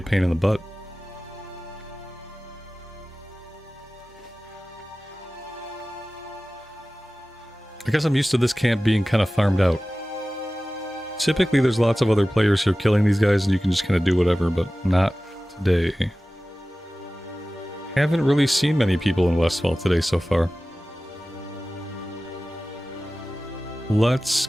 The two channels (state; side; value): normal; both; correlation 0.96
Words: pain in the butt. I guess I'm used to this camp being kind of farmed out. Typically there's lots of other players who are killing these guys and you can just kind of do whatever, but not today. Haven't really seen many people in Westfall today so far. Let's